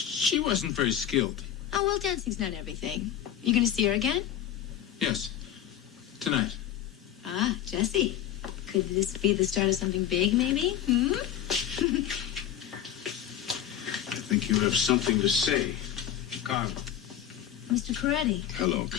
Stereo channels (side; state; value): right; quieter; 10.5 dB